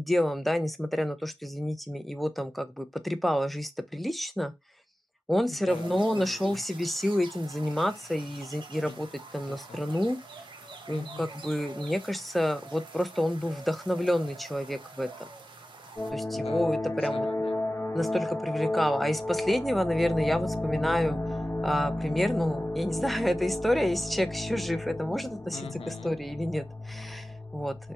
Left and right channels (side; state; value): both; normal; correlation 0.96